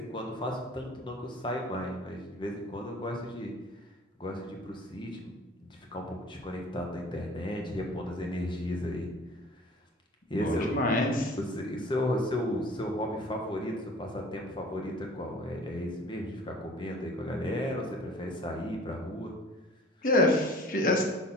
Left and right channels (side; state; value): both; normal; correlation 0.47